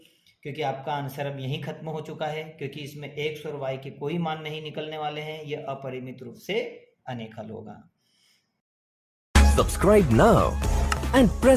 क्योंकि आपका आंसर अब यहीं खत्म हो चुका है, क्योंकि इसमें x और y के कोई मान नहीं निकलने वाले हैं। यह अपरिमित रूप से अनेक हल होगा। Subscribe now and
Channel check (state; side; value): identical; both; correlation 1.00